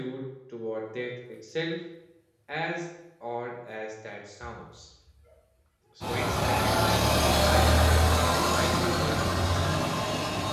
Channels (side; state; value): both; identical; correlation 1.00